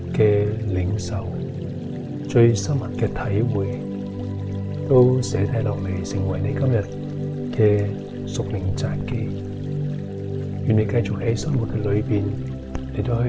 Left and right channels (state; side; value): identical; both; correlation 1.00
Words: 嘅領受、最深刻嘅體會，都寫低落嚟，成為你今日嘅屬靈札記。願你繼續喺生活嘅裏邊嚟到